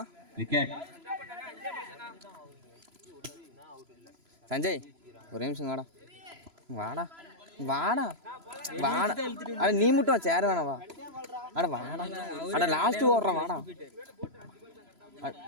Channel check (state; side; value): late; left; 3.0 ms